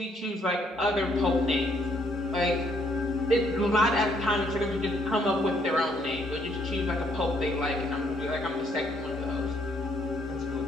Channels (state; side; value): normal; both; correlation 0.69